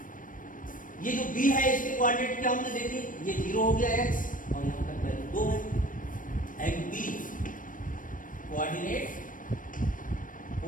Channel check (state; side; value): late; right; 0.39 ms